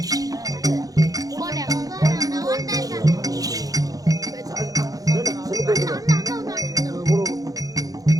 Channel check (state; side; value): late; left; 0.17 ms